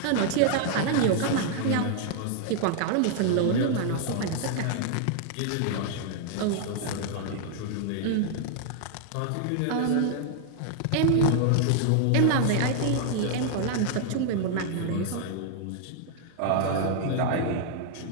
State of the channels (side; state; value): both; different; correlation 0.00